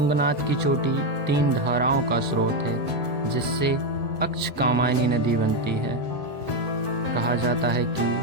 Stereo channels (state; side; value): normal; both; correlation 0.06